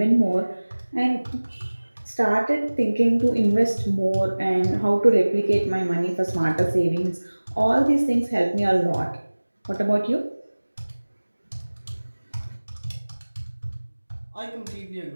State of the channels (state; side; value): inverted; both; correlation -1.00